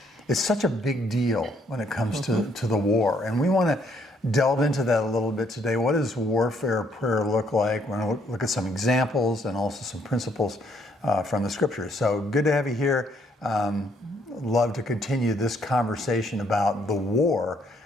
it's such a big deal when it comes to the war. And we want to delve into that a little bit today. What does warfare prayer look like? We're going to look at some examples and also some principles from the scriptures. So good to have you here. Love to continue this conversation about the war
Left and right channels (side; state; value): both; normal; correlation 0.69